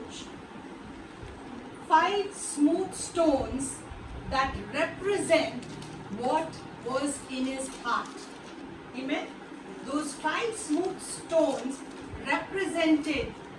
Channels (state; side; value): identical; both; correlation 1.00